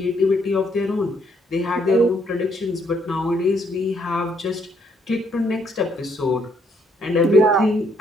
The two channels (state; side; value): normal; both; correlation 0.70